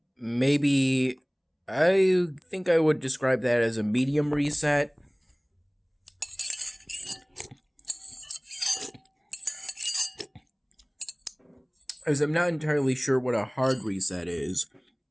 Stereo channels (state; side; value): identical; both; correlation 1.00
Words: maybe, I think I would describe that as a medium reset. As I'm not entirely sure what a hard reset is.